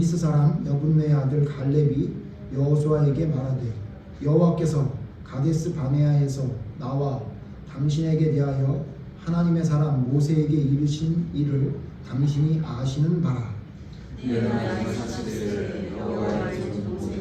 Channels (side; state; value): both; identical; correlation 1.00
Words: 사람 여분네 아들 갈렙이 여호수아에게 말하되 여호와께서 가데스 바네아에서 나와 당신에게 대하여 하나님의 사람 모세에게 이르신 일을 당신이 아시는 바라. 내가 사실을 여호와의 종